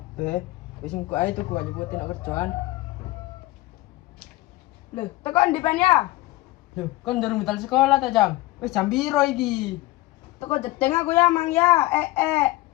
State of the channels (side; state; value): right; quieter; 18.7 dB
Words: Wis engko ae tuku aja buatin nak kerjaan. Lho, tekan di pen ya? Loh, kon durung betal sekolah ta jam? Wis jam piro iki? Teko jedeng aku ya, Mang ya.